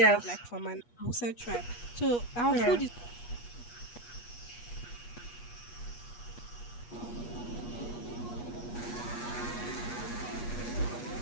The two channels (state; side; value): late; right; 8.4 ms